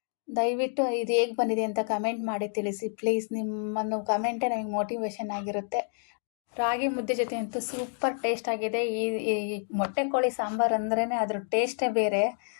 ದಯವಿಟ್ಟು ಇದು ಹೇಗೆ ಬಂದಿದೆ ಅಂತ ಕಮೆಂಟ್ ಮಾಡಿ ತಿಳಿಸಿ ಪ್ಲೀಸ್. ನಿಮ್ಮನ್ನು ಕಮೆಂಟೇ ನಮಗೆ ಮೋಟಿವೇಶನ್ ಆಗಿರುತ್ತೆ. ರಾಗಿ ಮುದ್ದೆ ಜೊತೆ ಅಂತೂ ಸೂಪರ್ ಟೇಸ್ಟ್ ಆಗಿದೆ. ಈ ಮೊಟ್ಟೆ ಕೋಳಿ ಸಾಂಬಾರು ಅಂದ್ರೇ ಅದ್ರ ಟೇಸ್ಟೇ ಬೇರೆ,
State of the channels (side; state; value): right; silent; 59 dB below the other